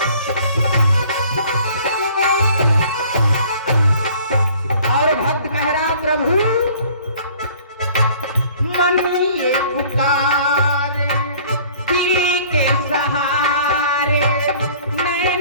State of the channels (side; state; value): both; inverted; correlation -0.52